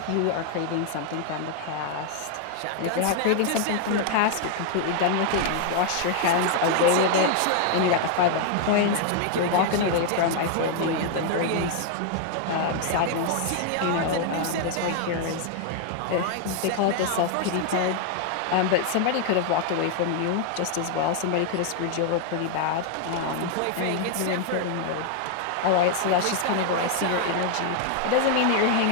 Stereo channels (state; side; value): different; both; correlation 0.00